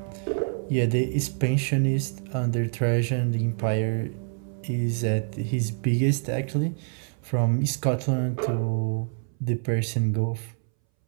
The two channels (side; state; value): left; silent; 61 dB below the other